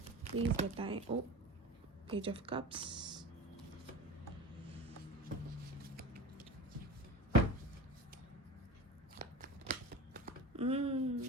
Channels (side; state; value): both; normal; correlation 0.32